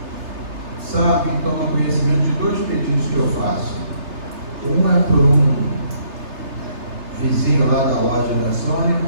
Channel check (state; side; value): late; left; 3.3 ms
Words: sabe e toma conhecimento de dois pedidos que eu faço. Um é por um vizinho lá da loja da Sônia,